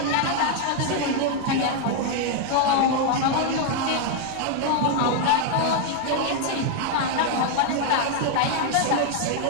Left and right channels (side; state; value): both; different; correlation 0.00